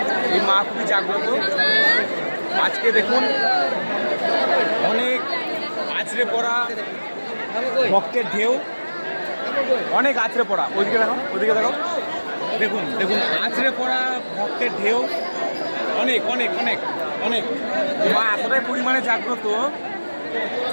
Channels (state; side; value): inverted; both; correlation -1.00